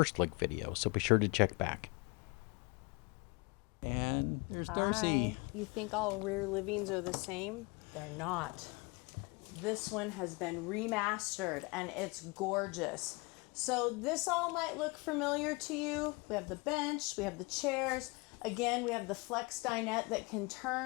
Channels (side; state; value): right; quieter; 27.6 dB